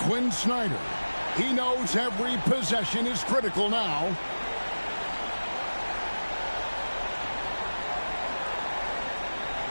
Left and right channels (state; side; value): inverted; both; correlation -1.00